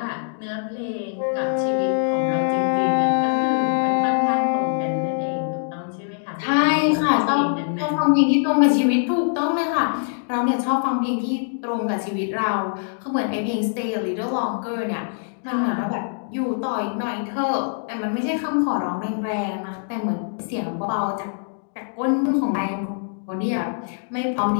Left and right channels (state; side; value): silent; right; digital silence